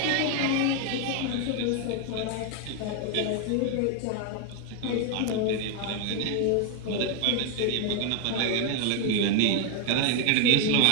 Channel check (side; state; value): both; different; correlation 0.01